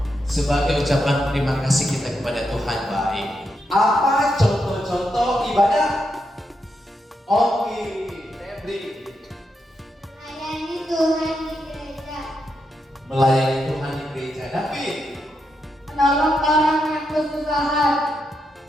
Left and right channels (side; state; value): both; normal; correlation 0.83